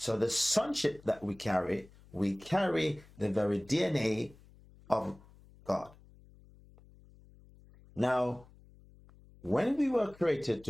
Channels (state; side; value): noise; left; hum, 25 dB below the sound